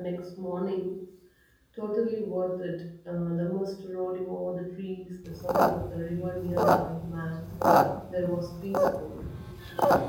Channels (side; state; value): both; identical; correlation 1.00